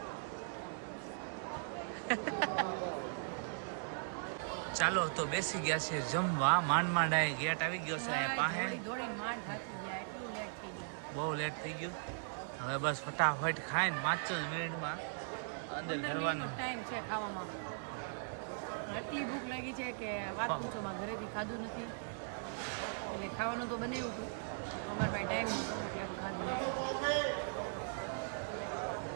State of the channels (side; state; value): left; silent; digital silence